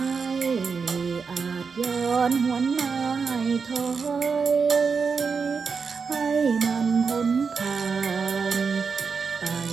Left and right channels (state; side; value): quieter; left; 5.4 dB